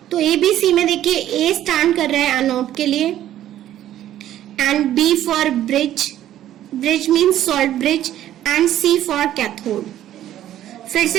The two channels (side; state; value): left; quieter; 12.2 dB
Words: तो ABC में देखिए A स्टैंड कर रहा है एनोड के लिए, and B for bridge, bridge means salt bridge, and C for cathode. फिर